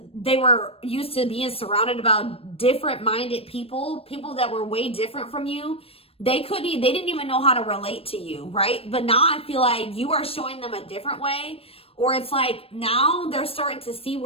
they were used to being surrounded about different minded people that were way different from you. They didn't even know how to relate to you, right? But now I feel like you are showing them a different way, or it's like now they're starting to see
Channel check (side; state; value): right; late; 0.28 ms